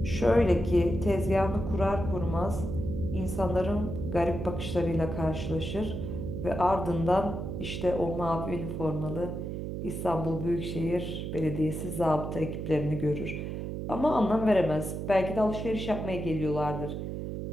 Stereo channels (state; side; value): noise; right; hum, 5 dB below the sound